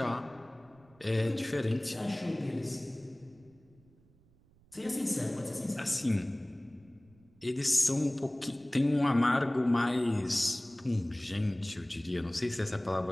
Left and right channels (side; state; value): right; noise; rumble, 30 dB below the sound